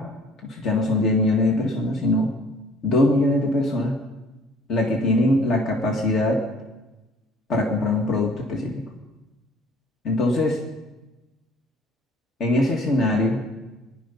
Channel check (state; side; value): normal; both; correlation 0.54